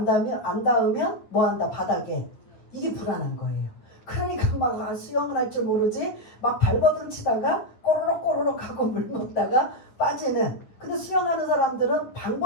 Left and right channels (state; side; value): late; right; 9.7 ms